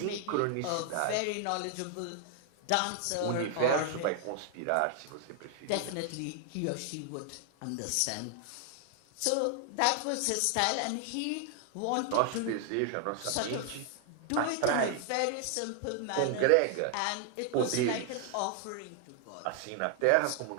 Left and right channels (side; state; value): both; different; correlation 0.00